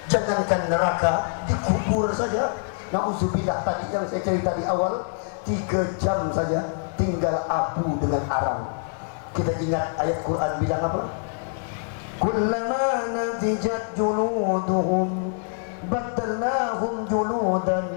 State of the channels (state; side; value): silent; right; digital silence